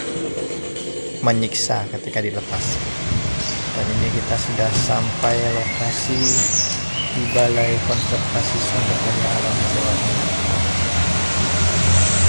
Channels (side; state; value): both; inverted; correlation -1.00